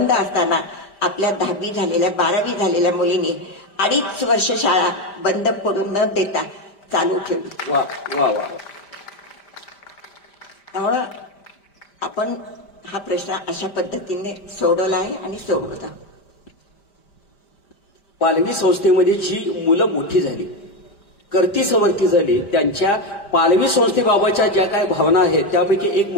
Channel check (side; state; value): right; late; 5.0 ms